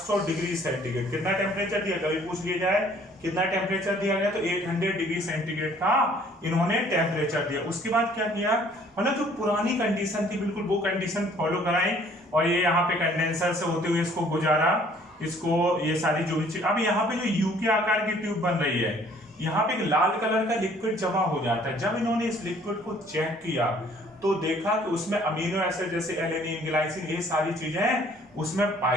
डिग्री सेंटीग्रेड, कितना टेम्परेचर दिया कभी पूछ लिया जाए, कितना टेम्परेचर दिया गया, तो 800 डिग्री सेंटीग्रेड का इन्होंने टेम्परेचर दिया। उसके बाद क्या किया, मतलब जो पुरानी कंडीशन थी बिल्कुल वो कंडीशन फॉलो कराई, और ये यहाँ पे कंडेंसर से होते हुए इसको गुजारा, इसको ये सारी जो भी चीज। अब यहाँ पे जो यू के आकार की ट्यूब बन रही है, यहाँ पे एक लाल कलर का लिक्विड जमा हो जाता है। जब इन्होंने इस लिक्विड को चेक किया तो देखा कि उसमें अमीनो एसिड जैसे एलेनिन, ग्लाइसिन, ये सारी चीजें उसमें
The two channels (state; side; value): normal; both; correlation 0.58